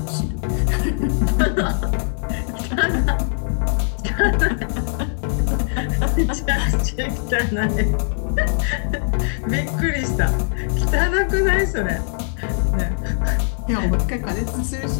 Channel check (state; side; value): silent; right; digital silence